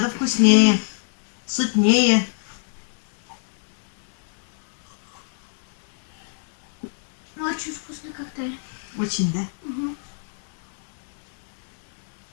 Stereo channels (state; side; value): silent; right; digital silence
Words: вкуснее, сытнее. Очень вкусный коктейль. Очень, да? Угу.